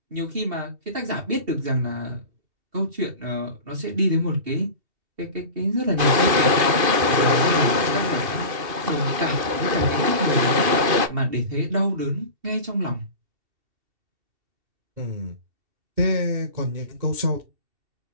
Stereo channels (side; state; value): left; late; 2.5 ms